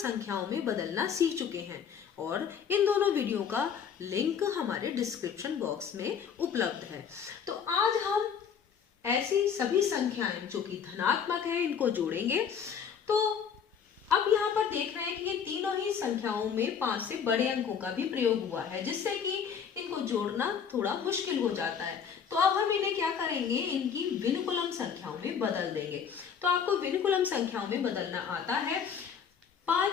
में बदलना सीख चुके हैं और इन दोनों वीडियो का लिंक हमारे डिस्क्रिप्शन बॉक्स में उपलब्ध है। तो आज हम ऐसी सभी संख्याएं जो कि धनात्मक है इनको जोड़ेंगे। तो अब यहाँ पर देख रहे हैं कि ये तीनों ही संख्याओं में 5 से बड़े अंकों का भी प्रयोग हुआ है, जिससे कि इनको जोड़ना थोड़ा मुश्किल हो जाता है। तो अब हम इन्हें क्या करेंगे, इनकी विनुकुलम संख्याओं में बदल देंगे। तो आपको विनुकुलम संख्याओं में बदलना आता है।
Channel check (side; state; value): right; quieter; 7.3 dB